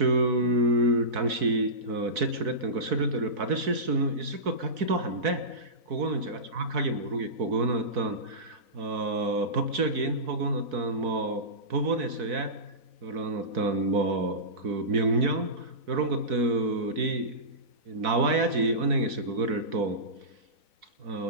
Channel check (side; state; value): left; late; 4.6 ms